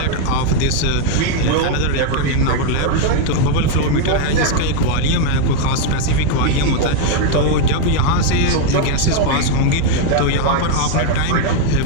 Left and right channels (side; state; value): both; different; correlation 0.01